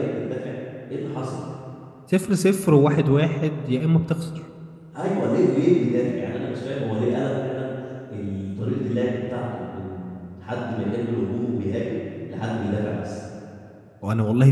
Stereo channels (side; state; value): both; identical; correlation 1.00